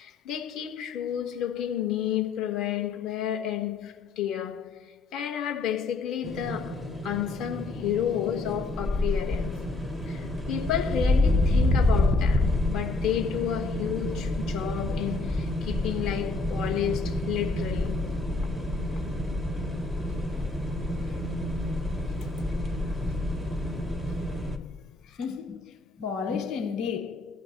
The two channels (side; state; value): right; quieter; 3.5 dB